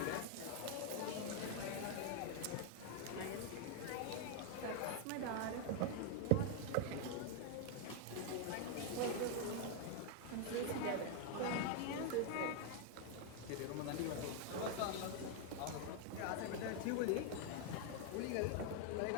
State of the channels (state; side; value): different; both; correlation 0.00